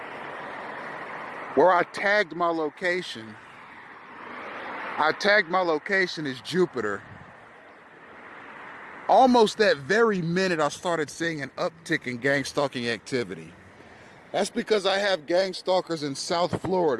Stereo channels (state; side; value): identical; both; correlation 1.00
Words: where I tagged my location as Jupiter. Almost that very minute, I started seeing an uptick in gang stalking activity. That's because I have gang stalkers in South